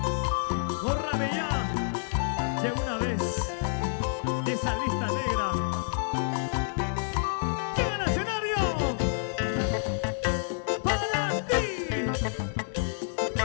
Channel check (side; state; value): right; silent; digital silence